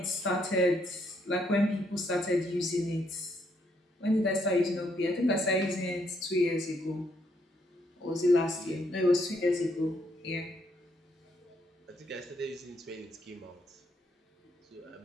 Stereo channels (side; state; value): both; normal; correlation 0.73